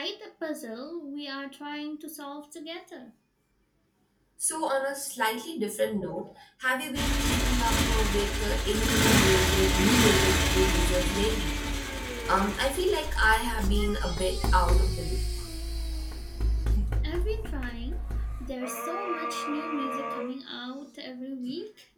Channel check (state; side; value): identical; both; correlation 1.00